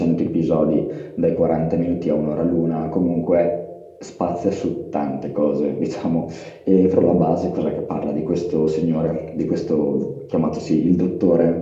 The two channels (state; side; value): identical; both; correlation 1.00